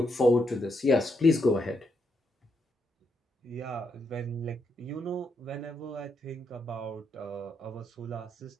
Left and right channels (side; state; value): both; normal; correlation 0.79